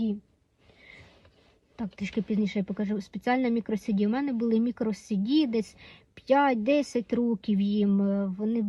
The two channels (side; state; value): both; identical; correlation 1.00